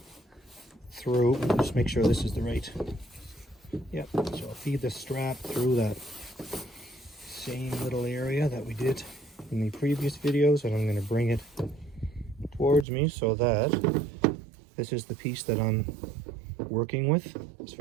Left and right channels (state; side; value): drops out; left; at 12.9 s